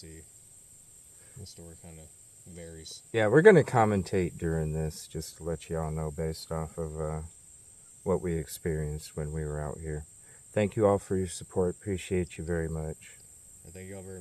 the story kind of varies. Yeah, we're going to commentate during this just to let y'all know based off of what we experienced when we were out here. Thank you all for your support. Appreciate you very much. And thank you all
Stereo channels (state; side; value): identical; both; correlation 1.00